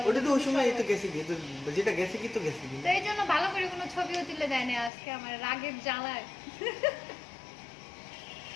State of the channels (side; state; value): right; drops out; at 4.9 s